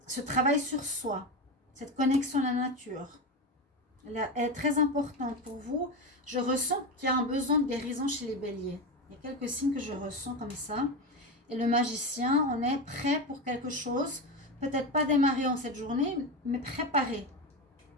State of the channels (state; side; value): normal; both; correlation 0.18